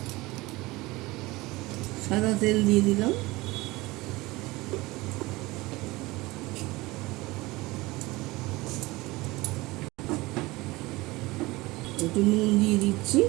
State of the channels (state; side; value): quieter; left; 21.1 dB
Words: তেল দিয়ে দিলাম। একটু নুন দিয়ে দিচ্ছি।